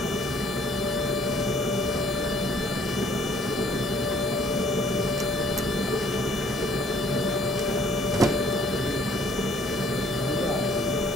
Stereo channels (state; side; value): normal; both; correlation 0.61